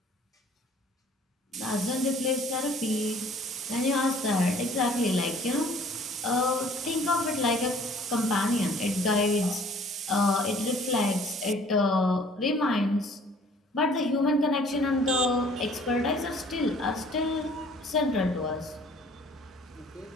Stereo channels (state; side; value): normal; both; correlation 0.54